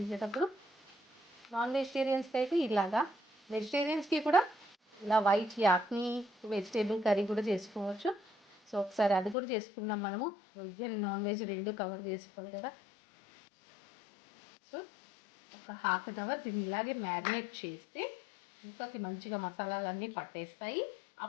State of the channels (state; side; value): drops out; right; at 9.3 s